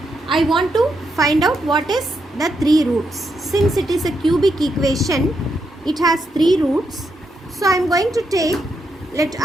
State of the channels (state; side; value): normal; both; correlation 0.81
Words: I want to find out what is the three roots. Since it is a cubic equation, it has three roots. So I am going to take let